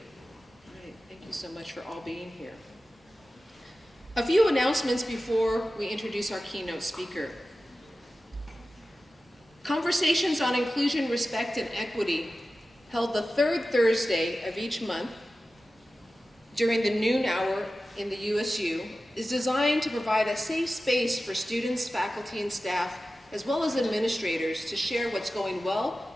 Great, thank you so much for all being here. A few announcements before we introduce our keynote speaker. Conversations on Inclusion, Respect, and Equity, held the third Thursday of each month during the noon hour in the USU, is designed to provide a safe space for students, faculty, and staff, as well as administrators, to share what's going well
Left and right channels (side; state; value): both; normal; correlation 0.94